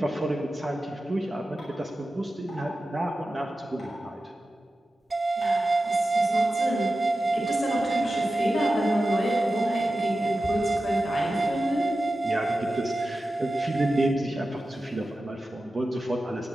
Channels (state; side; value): normal; both; correlation 0.93